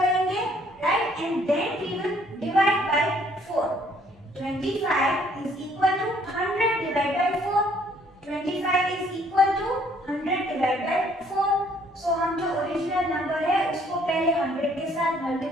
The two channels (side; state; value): both; normal; correlation 0.63